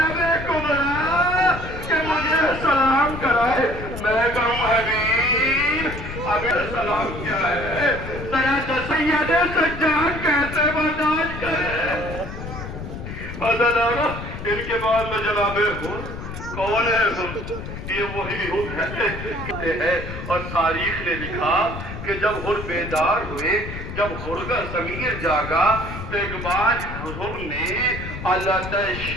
کبریٰ کہ مجھے سلام کرائے۔ میں کہوں حبیب ابھی سلام کیا ہے، ذرا سید سجاد کیسے برداشت کرے۔ عزیزانو، ان کے بعد میں جناب کون ہے؟ یہ وہی ہے۔ اور تاریخ نے لکھا کہ جب حر بیدار ہوئے، جب حر کا ضمیر جاگا تو ایک بار حر نے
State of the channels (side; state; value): left; noise; rumble, 9 dB below the sound